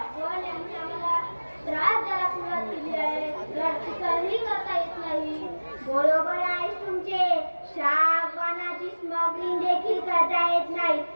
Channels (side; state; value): both; inverted; correlation -1.00